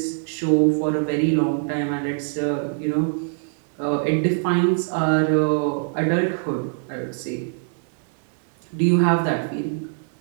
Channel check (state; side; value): silent; left; digital silence